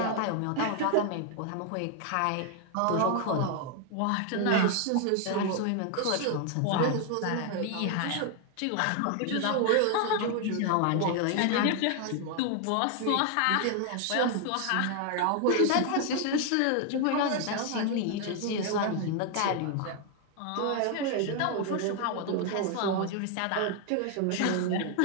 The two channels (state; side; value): different; both; correlation 0.01